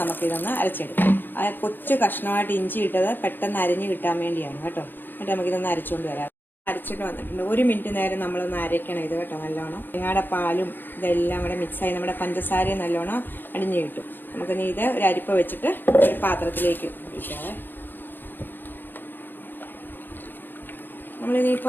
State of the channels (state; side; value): late; right; 0.094 ms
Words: നമുക്കിതൊന്ന് അരച്ചെടുക്കാം. ആ കൊച്ചു കഷ്ണമായിട്ട് ഇഞ്ചി ഇട്ടത് പെട്ടെന്ന് അരിഞ്ഞ് കിട്ടാൻ വേണ്ടിയാണ് കേട്ടോ. എന്നിട്ട് നമുക്കിതൊന്ന് അരച്ചുകൊണ്ട് വരാം. അരച്ചിട്ട് വന്നിട്ടുണ്ട്. 1 മിനിറ്റ് നേരം നമ്മളൊന്ന് അരയ്ക്കണം ഇത് കേട്ടോ. നല്ലോണം തേങ്ങയുടെ പാലും ഇതെല്ലാം കൂടെ മിക്സായി നമ്മുടെ പഞ്ചസാരയും നല്ലോണം അടിഞ്ഞു കിട്ടും. നമുക്കിനി ഇത് ഒരു അരിപ്പ വെച്ചിട്ട് ഒരു പാത്രത്തിലേക്ക് ഒഴിക്കാവേ.